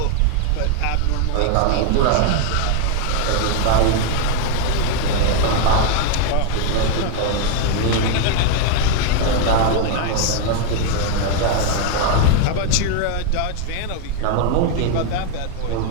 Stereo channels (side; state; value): both; different; correlation 0.01